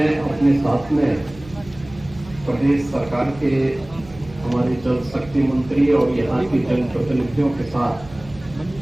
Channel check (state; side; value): noise; right; hum, 19 dB below the sound